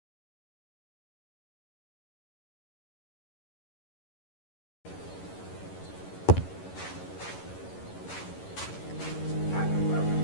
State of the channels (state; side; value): late; right; 11 ms